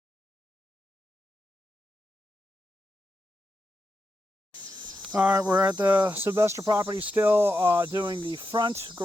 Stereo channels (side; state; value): both; normal; correlation 0.87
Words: All right, we're at the Sylvester property still doing the front